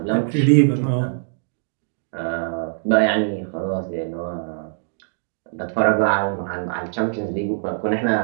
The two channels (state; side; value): silent; left; digital silence